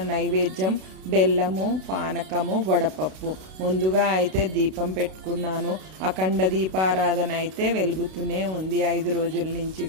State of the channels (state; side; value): late; left; 32 ms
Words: నైవేద్యం బెల్లము, పానకము, వడపప్పు. ముందుగా అయితే దీపం పెట్టుకున్నాను. అఖండ దీపారాధన అయితే వెలుగుతూనే ఉంది 5 రోజుల నుంచి